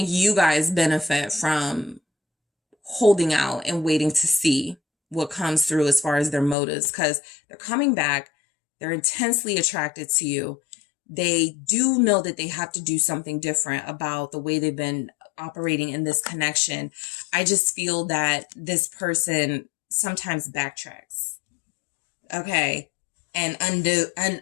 you guys benefit from holding out and waiting to see what comes through as far as their motives, because they're coming back. They're intensely attracted to you. They do know that they have to do something different about the way they've been operating in this connection. I just feel that this person sometimes backtracks, okay, and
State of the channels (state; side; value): drops out; right; at 6.6 s